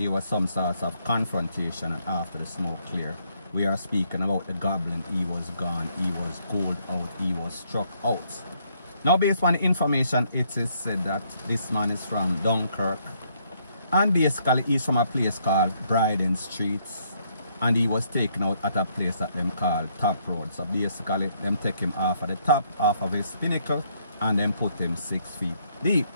was some sort of confrontation. And after the smoke cleared, we are speaking about the Goblin. He was gone, he was cooled out, he was struck out. Now based on the information, it is said that this man is from Dunkirk, and basically he's from a place called Bryden Street, and he was taken out at a place that them call Top Road. So basically them take him off of the top, off of his pinnacle, and then put him 6 feet deep.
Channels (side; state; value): both; inverted; correlation -0.70